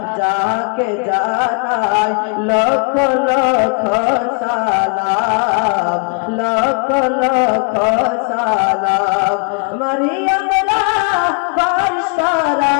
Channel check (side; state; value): right; quieter; 38.4 dB